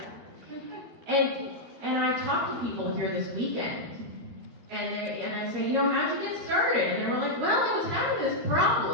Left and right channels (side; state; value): left; late; 13 ms